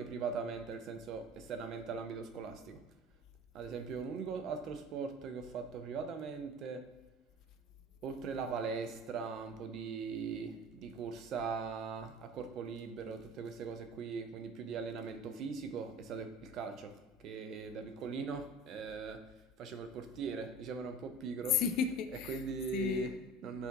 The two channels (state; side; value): normal; both; correlation 0.40